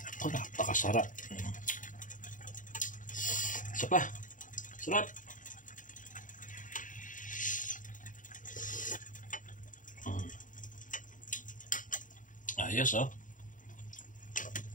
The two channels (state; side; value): late; right; 0.38 ms